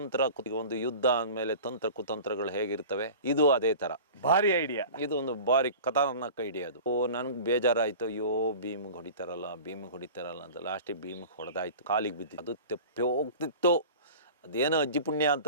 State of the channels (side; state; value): both; inverted; correlation -0.38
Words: ಒಂದು ಯುದ್ಧ ಅಂದಮೇಲೆ ತಂತ್ರ ಕುತಂತ್ರಗಳು ಹೇಗಿರ್ತವೆ, ಇದು ಅದೇ ತರ ಭಾರಿ ಐಡಿಯಾ. ಇದು ಒಂದು ಭಾರಿ ಖತರ್ನಾಕ್ ಐಡಿಯಾ ಅದು. ನನ್ಗೆ ಬೇಜಾರಾಯ್ತು, ಅಯ್ಯೋ ಭೀಮಿಗೆ ಹೊಡಿತಾರಲ್ಲ ಅಂತ. ಲಾಸ್ಟಿಗೆ ಭೀಮಿಗೆ ಹೊಡೆದಾಯ್ತು, ಕಾಲಿಗೆ ಬಿದ್ದಿತ್ತು. ಅದು ತೆಪ್ಪಿ ಹೋಗ್ತಿತ್ತು. ಅದೇನೋ ಅಜ್ಜಿ ಪುಣ್ಯ